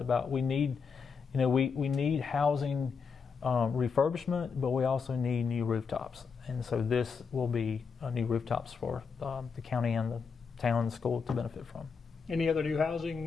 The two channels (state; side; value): quieter; right; 5.6 dB